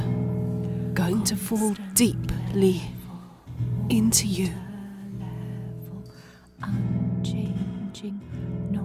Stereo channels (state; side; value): identical; both; correlation 1.00